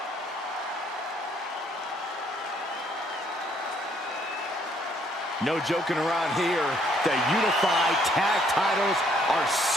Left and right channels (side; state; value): both; normal; correlation 0.66